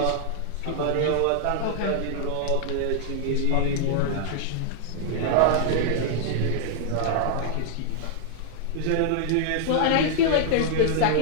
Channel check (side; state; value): both; different; correlation -0.01